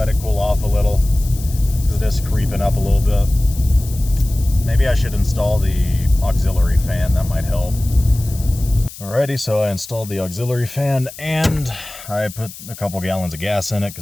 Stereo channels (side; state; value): left; noise; hiss, 15 dB below the sound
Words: it cool off a little, because it is creeping up a little bit. Maybe I should install the auxiliary fan, that might help. Alrighty, so I installed the auxiliary fan, and I put a couple gallons of gas in it,